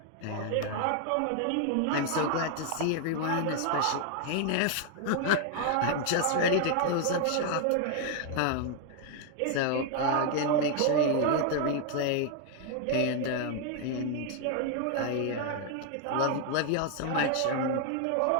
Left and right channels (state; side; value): different; both; correlation 0.00